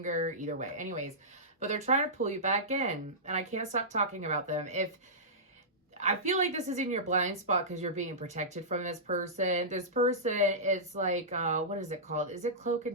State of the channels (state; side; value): normal; both; correlation -0.16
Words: either way. Anyways, but they're trying to pull you back in, and I can't stop talking about them. I feel like this is in your blind spot because you're being protected from this person. This person is like, what is it called? Is it Cloak